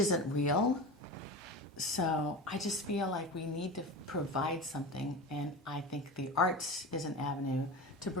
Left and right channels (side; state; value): both; normal; correlation 0.29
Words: real. So I just feel like we need to provide something, and I think the arts is an avenue to